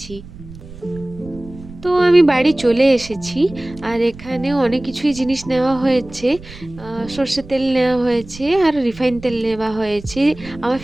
তো আমি বাড়ি চলে এসেছি, আর এখানে অনেক কিছুই জিনিস নেওয়া হয়েছে। সর্ষের তেল নেওয়া হয়েছে আর রিফাইন তেল নেওয়া হয়েছে, আমার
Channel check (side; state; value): right; noise; rumble, 17 dB below the sound